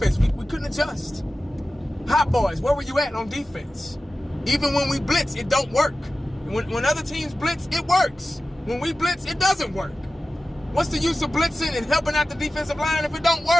we couldn't adjust. Hot boys, where were you at on defense? Even when we blitz, it don't work. When other teams blitz, it works. When we blitz, it doesn't work. What's the use of blitzing and helping out the defensive line if it don't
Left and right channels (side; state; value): both; normal; correlation 0.95